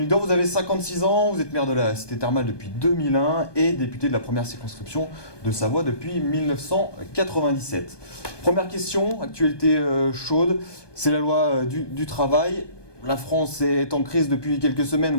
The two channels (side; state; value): right; late; 1.2 ms